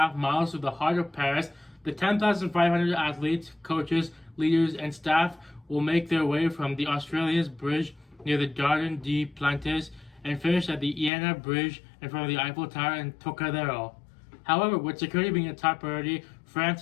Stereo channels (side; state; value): right; drops out; at 11.1 s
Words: miles through the heart of Paris, the 10,500 athletes, coaches, leaders, and staff will make their way from the Australia's Bridge near the Jardin des Plantes and finish at the Iéna Bridge in front of the Eiffel Tower in Trocadero. However, with security being a top priority, France